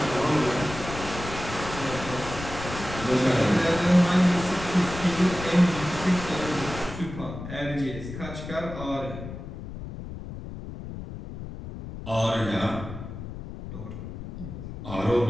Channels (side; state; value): left; noise; rumble, 10 dB below the sound